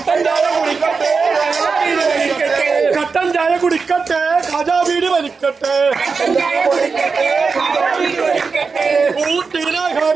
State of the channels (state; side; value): quieter; left; 4.8 dB